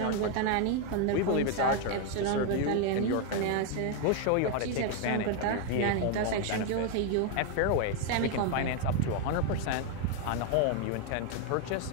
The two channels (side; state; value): both; different; correlation 0.01